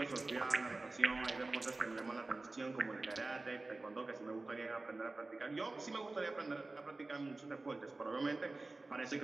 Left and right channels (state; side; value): quieter; left; 3.2 dB